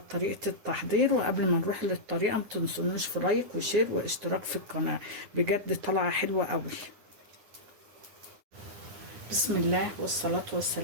طريقة التحضير. وقبل ما نروح للطريقة ما تنسونوش في لايك وشير واشتراك في القناة، بجد طالعة حلوة قوي. بسم الله والصلاة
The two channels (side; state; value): left; late; 9.9 ms